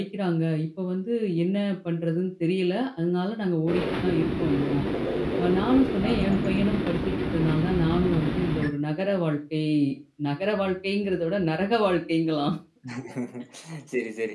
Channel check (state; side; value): identical; both; correlation 1.00